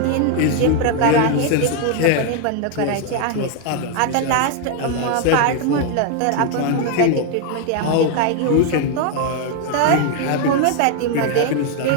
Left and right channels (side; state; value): both; different; correlation 0.00